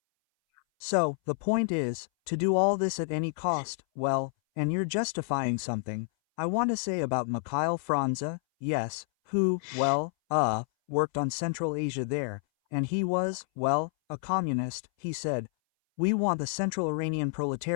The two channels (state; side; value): silent; right; 58 dB below the other